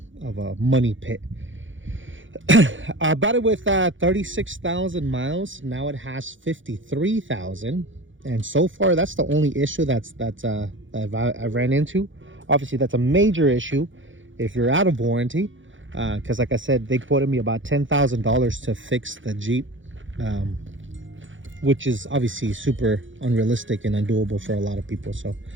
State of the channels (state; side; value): late; left; 0.56 ms